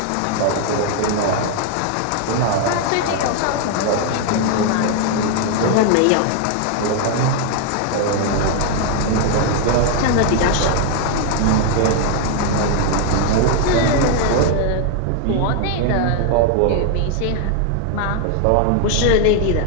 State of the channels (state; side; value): different; both; correlation 0.00